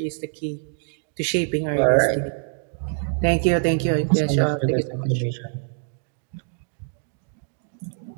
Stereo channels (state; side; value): silent; left; 62 dB below the other